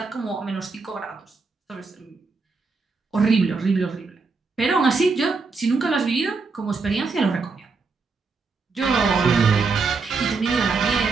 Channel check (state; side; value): quieter; left; 4.4 dB